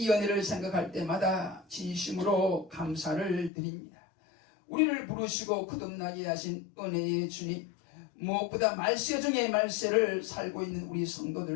은혜를 생각할 때마다 진심으로 감사를 드립니다. 우리를 부르시고 거듭나게 하신 은혜의 주님, 무엇보다 말세 중에 말세를 살고 있는 우리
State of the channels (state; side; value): drops out; right; at 3.5 s